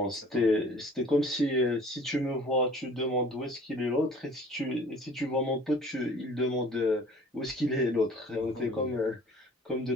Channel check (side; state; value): both; normal; correlation 0.49